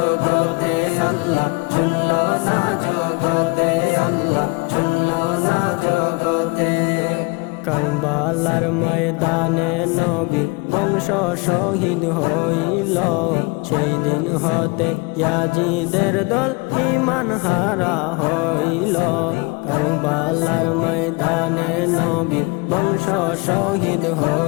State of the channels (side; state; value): right; quieter; 28.2 dB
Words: আল্লাহ, শুনল না জগতে আল্লাহ, শুনল না জগতে। কারবালার ময়দানে নবীর বংশ শহীদ হইল, সেই দিন হতে ইয়াজিদের দল ঈমান হারা হইল। কারবালার ময়দানে নবীর বংশ শহীদ